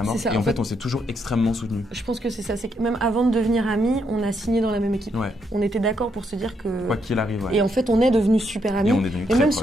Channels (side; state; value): both; normal; correlation 0.77